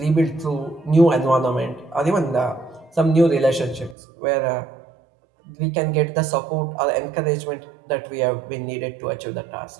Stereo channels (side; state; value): left; drops out; at 4.0 s